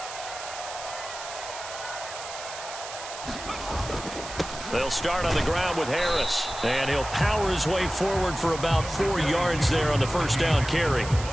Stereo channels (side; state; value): right; noise; hiss, 11 dB below the sound